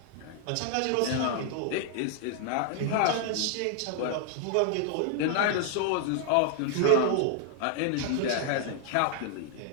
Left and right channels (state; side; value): different; both; correlation 0.00